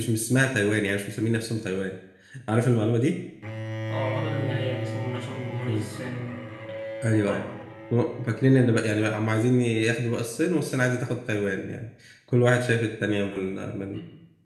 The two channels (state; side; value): identical; both; correlation 1.00